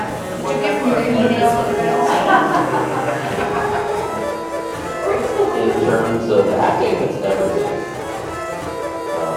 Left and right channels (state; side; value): identical; both; correlation 1.00